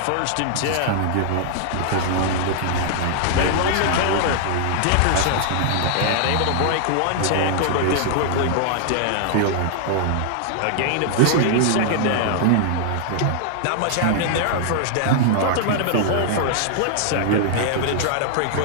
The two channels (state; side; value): different; both; correlation -0.01